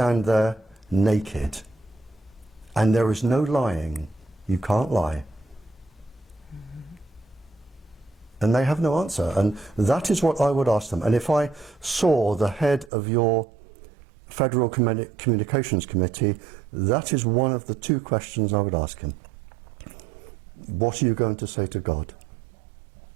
there naked and there is no lying, you can't lie. And they have no answer. And that is what I would ask them. And if I saw the head of your Federal Communications Committee, that is one of the two questions I would ask him. What are you going to say to God?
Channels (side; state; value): left; drops out; at 12.9 s